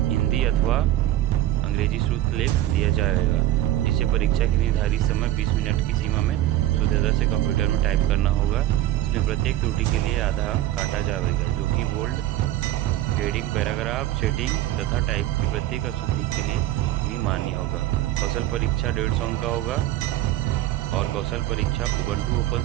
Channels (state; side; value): quieter; left; 13.9 dB